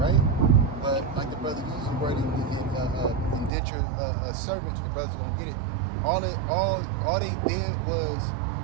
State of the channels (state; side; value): drops out; left; at 3.5 s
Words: But like the brother used the word indentured servant, the brothers don't get it. All they did was